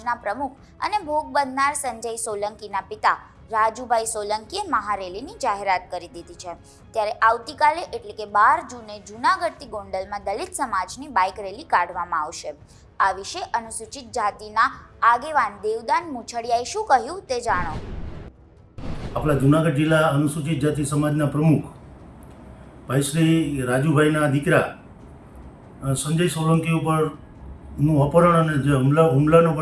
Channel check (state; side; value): identical; both; correlation 1.00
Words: પ્રમુખ અને ભોગ બનનાર સંજય સોલંકીના પિતા રાજુભાઈ સોલંકીએ મહારેલીની જાહેરાત કરી દીધી છે. ત્યારે આવતીકાલે એટલે કે 12 જૂને જૂનાગઢથી ગોંડલમાં દલિત સમાજની બાઇક રેલી કાઢવામાં આવશે. આ વિશે અનુસૂચિત જાતિના આગેવાન દેવદાન મુછડિયાએ શું કહ્યું તે જાણો. આપણા જૂનાગઢ જિલ્લા અનુસૂચિત જાતિ સમાજના પ્રમુખ ભાઈ શ્રી રાજુભાઈના દીકરા સંજય સોલંકી ઉપરનું અપહરણ અને જે હુમલાનો